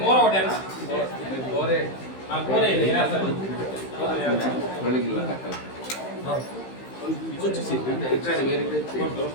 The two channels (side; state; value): right; late; 15 ms